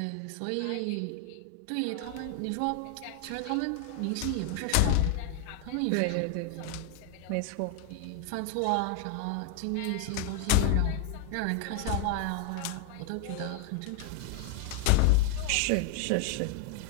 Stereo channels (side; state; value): both; different; correlation 0.00